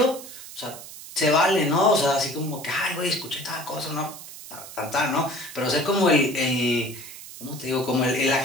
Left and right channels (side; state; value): right; noise; hiss, 14 dB below the sound